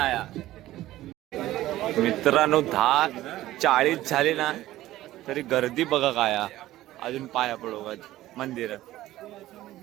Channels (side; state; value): left; quieter; 15.3 dB